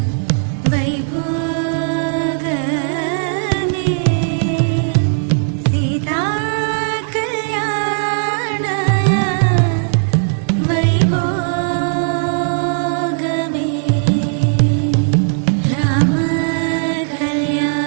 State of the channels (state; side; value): silent; left; 68 dB below the other